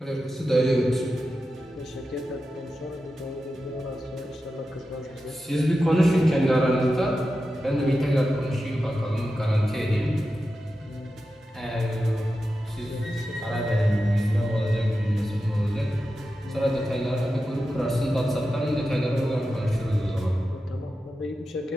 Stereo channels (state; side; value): normal; both; correlation 0.91